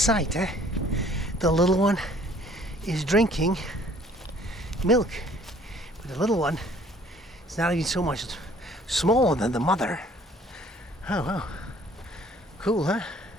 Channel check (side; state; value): both; normal; correlation 0.56